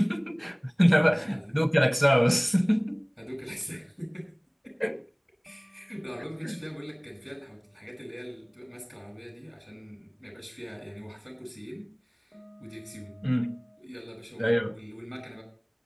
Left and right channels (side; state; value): both; identical; correlation 1.00